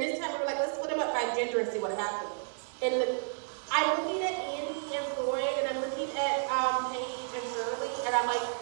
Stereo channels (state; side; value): silent; left; digital silence